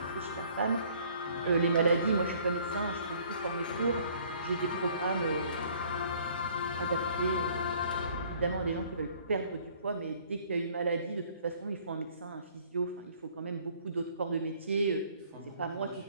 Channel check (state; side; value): inverted; both; correlation -0.58